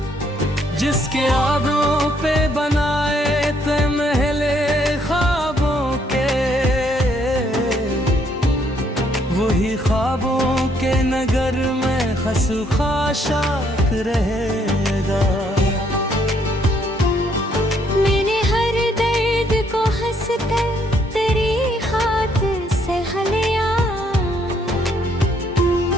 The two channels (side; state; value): both; normal; correlation 0.69